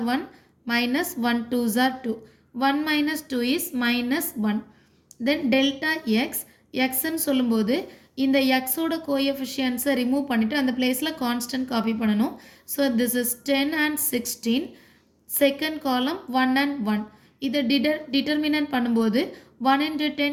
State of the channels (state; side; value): identical; both; correlation 1.00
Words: 1 minus 1 2s are 2. 1 minus 2 is minus 1. Then delta X எக்ஸ்ன்னு சொல்லும்போது இந்த எக்ஸோட கோஎஃபிஷியன்ஸை ரிமூவ் பண்ணிவிட்டு அந்த பிளேஸில் கான்ஸ்டன்ட் காப்பி பண்ணணும். So this is 10 and 16. Second column 1 and 1. இதை டிட்டர்மினன்ட் பண்ணும்போது 1 into